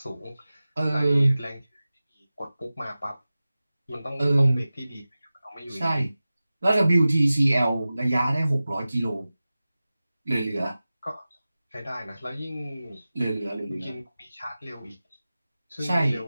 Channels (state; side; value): inverted; both; correlation -0.96